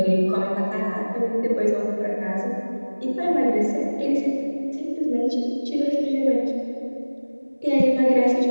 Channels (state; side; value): inverted; both; correlation -1.00